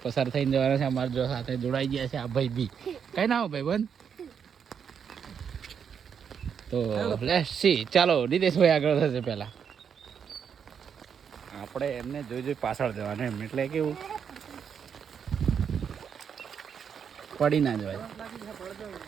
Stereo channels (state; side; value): quieter; left; 7.3 dB